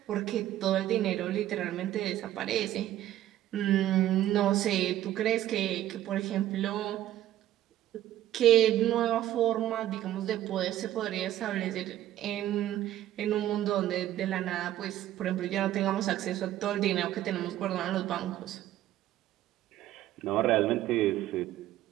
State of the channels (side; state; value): left; quieter; 13.2 dB